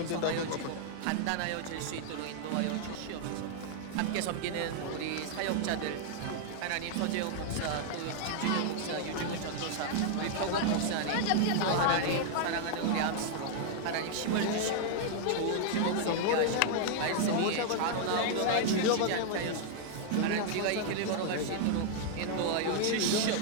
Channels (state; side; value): different; both; correlation 0.00